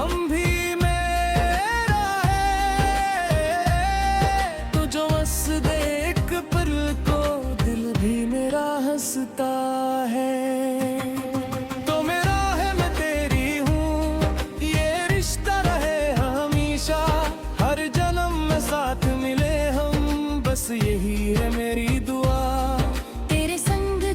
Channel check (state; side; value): identical; both; correlation 1.00